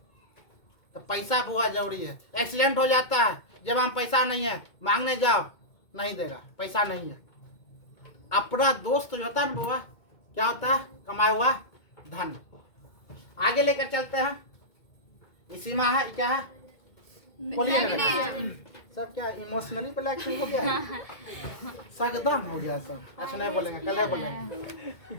तो पैसा बुआ जरूरी है। एक्सीडेंट हो जाता है, जब हम पैसा नहीं है मांगने जाओ नहीं देगा, पैसा नहीं है। अपना दोस्त जो होता है ना बुआ, क्या होता है? कमाया हुआ धन। आगे लेकर चलते हैं। इसी में है क्या है? बोलिए ना सब। क्या इमोशनली ब्लैकमेल हो गया, सगदम हो गया सब। अच्छा नहीं बोलेंगे, कल बोलेंगे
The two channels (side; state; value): right; late; 2.2 ms